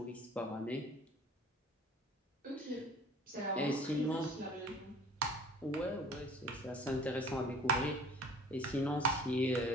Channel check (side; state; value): both; normal; correlation 0.49